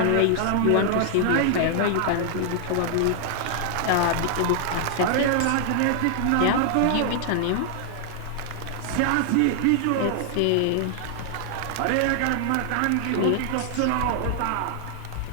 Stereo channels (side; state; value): both; different; correlation 0.00